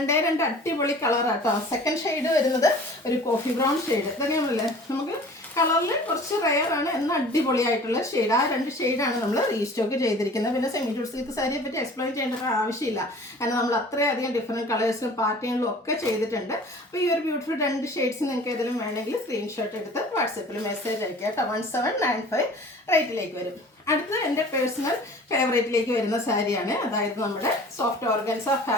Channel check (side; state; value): both; normal; correlation 0.45